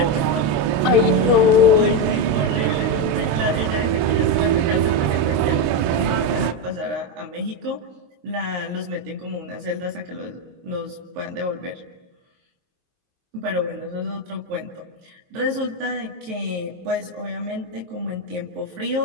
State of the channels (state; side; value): late; left; 23 ms